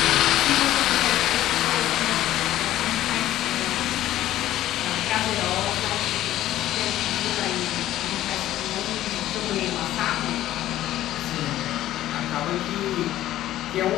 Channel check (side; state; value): right; quieter; 13.7 dB